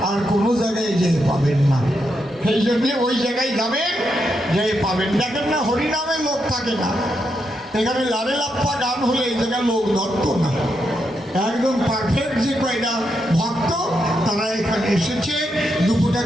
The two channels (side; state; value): both; normal; correlation 0.82